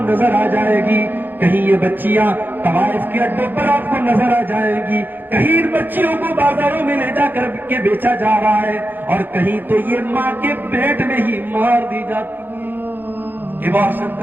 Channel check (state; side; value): late; left; 0.090 ms